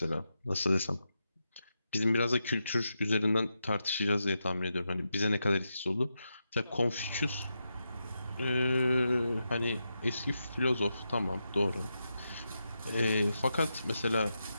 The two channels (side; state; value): both; inverted; correlation -0.87